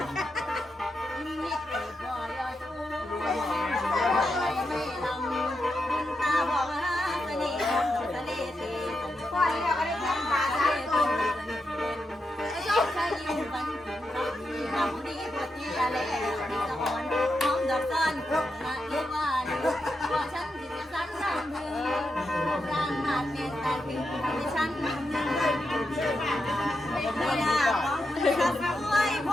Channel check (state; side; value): normal; both; correlation 0.86